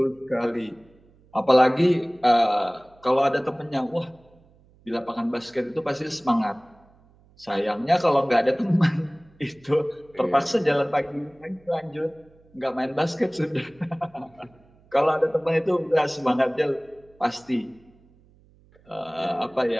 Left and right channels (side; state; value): right; noise; hum, 30 dB below the sound